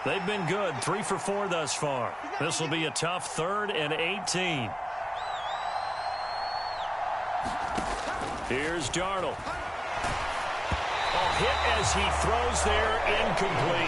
They've been good, 3 for 4 thus far. This will be a tough 3rd and 18. Here's Darnold. A hit as he throws there,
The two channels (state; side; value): identical; both; correlation 1.00